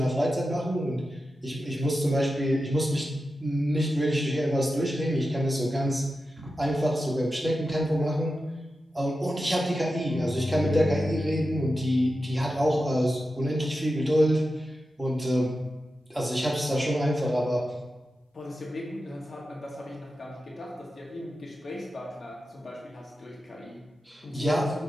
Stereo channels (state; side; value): normal; both; correlation 0.91